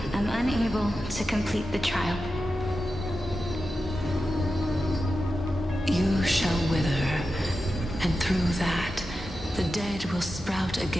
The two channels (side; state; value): both; normal; correlation 0.91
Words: am unable to complete the trial. You shall wither, and through that, the dead will sprout